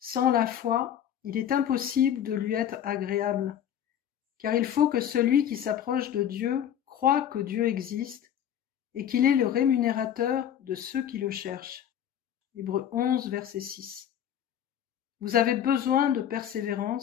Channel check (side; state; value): right; quieter; 9.8 dB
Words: la foi, il est impossible de lui être agréable, car il faut que celui qui s'approche de Dieu croie que Dieu existe et qu'il est le rémunérateur de ceux qui le cherchent. Hébreux 11, verset 6. Vous avez besoin de